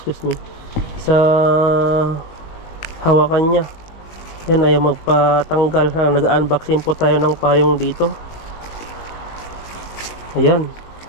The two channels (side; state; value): right; late; 19 ms